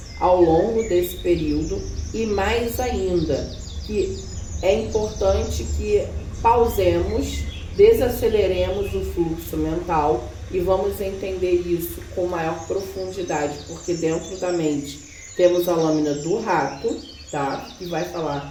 ao longo desse período, e mais ainda, que é importante que pausemos, desaceleremos o fluxo mental e vamos entender isso com maior profundidade, porque dentro da mente temos a lâmina do rato, tá? Que vai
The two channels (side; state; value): both; identical; correlation 1.00